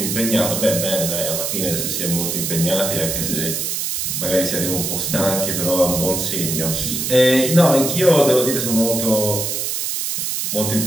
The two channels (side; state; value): right; noise; hiss, 2 dB below the sound